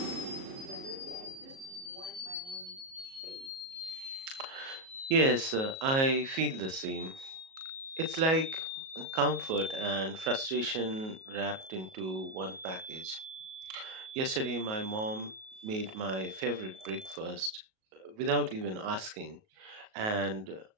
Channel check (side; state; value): left; late; 37 ms